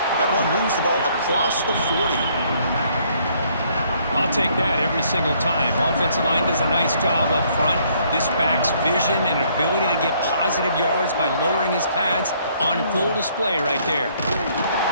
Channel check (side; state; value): both; inverted; correlation -0.65